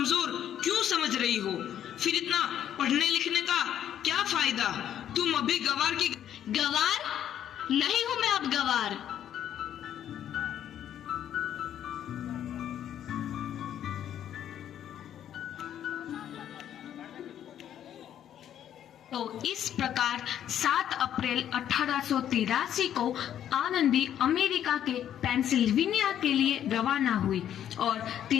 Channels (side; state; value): right; quieter; 10.4 dB